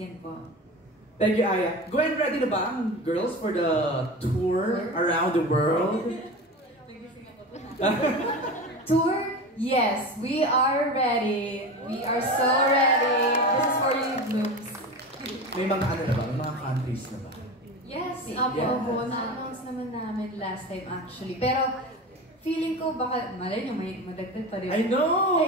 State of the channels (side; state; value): both; normal; correlation 0.28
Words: po. Thank you, Aya. Gwen, ready na ba ang girls for the tour around the world? Tour? Yes, we are ready. We are so ready. This is for you, Blooms. May mga ano na ba? May mga countries na ba? Yes, Opo, na-announce naman namin last time actually. Pero feeling ko baka, malay nyo, may madagdag pa rin. I know!